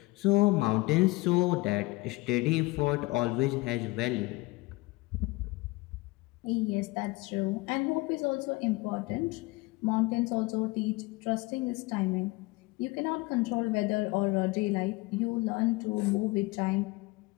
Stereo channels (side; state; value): right; quieter; 22.8 dB